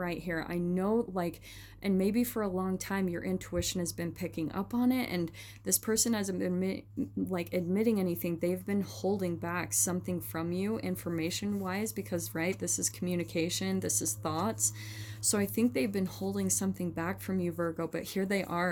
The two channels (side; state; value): both; identical; correlation 1.00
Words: here. I know, like, and maybe for a long time your intuition has been picking up on it, and this person hasn't been admitting anything. They've been holding back something from you information wise, because right, this is communication, this is thoughts. So I think they've been holding something back from you, Virgo, but here they